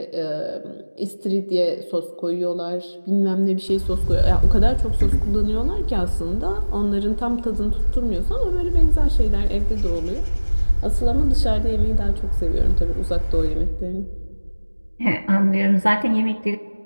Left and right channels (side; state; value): both; inverted; correlation -1.00